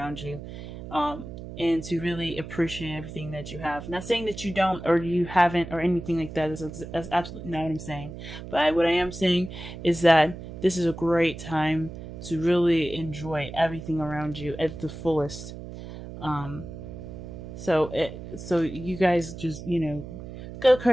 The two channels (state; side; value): noise; right; hum, 11 dB below the sound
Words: you, and to really appreciate everything that you have. Not saying that you don't or you haven't or anything like that. That's absolutely not what I'm saying. But what I am saying is that this is a great time to really enjoy everything around you at the fullest. Um, so you guys just, go